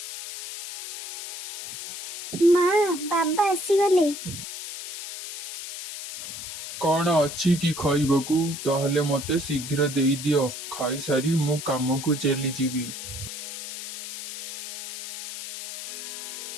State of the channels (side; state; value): left; noise; hiss, 7 dB below the sound